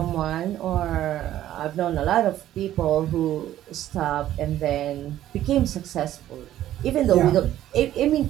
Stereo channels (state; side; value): quieter; left; 12.7 dB